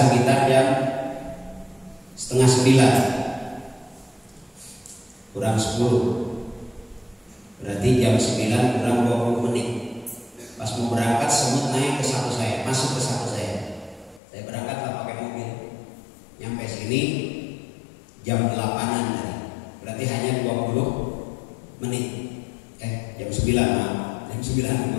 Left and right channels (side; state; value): right; drops out; at 14.2 s